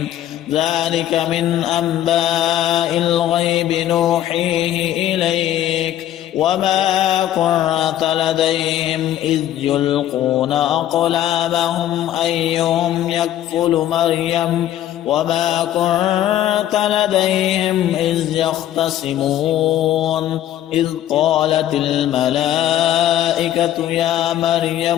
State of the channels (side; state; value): right; quieter; 12.2 dB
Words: ذلك من أنباء الغيب نوحيه إليك وما كنت لديهم إذ يلقون أقلامهم أيهم يكفل مريم وما كنت لديهم إذ يختصمون إذ قالت الملائكة يا